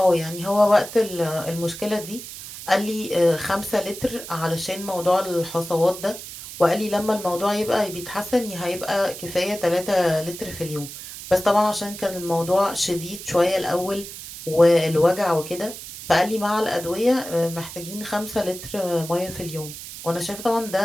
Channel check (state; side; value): noise; right; hiss, 12 dB below the sound